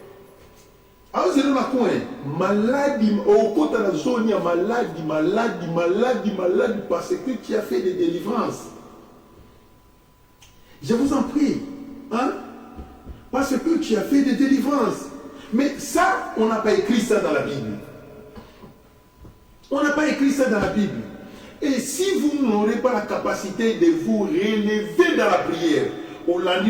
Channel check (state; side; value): identical; both; correlation 1.00